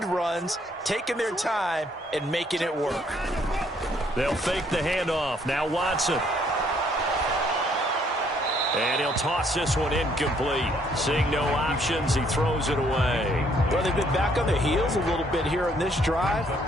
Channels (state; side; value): normal; both; correlation 0.66